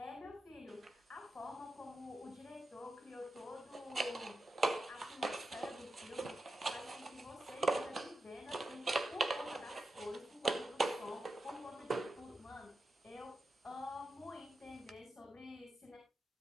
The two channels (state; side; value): normal; both; correlation 0.90